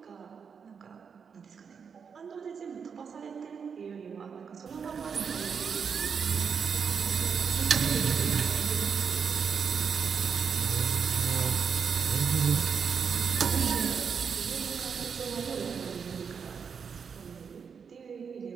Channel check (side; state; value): left; quieter; 6.4 dB